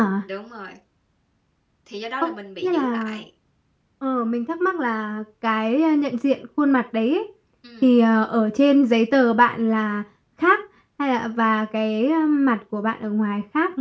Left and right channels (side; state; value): both; identical; correlation 1.00